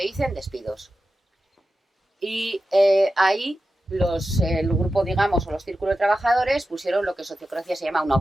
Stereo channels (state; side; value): normal; both; correlation 0.92